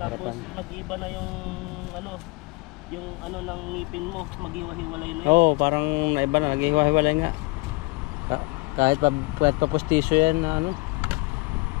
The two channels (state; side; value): quieter; right; 25.6 dB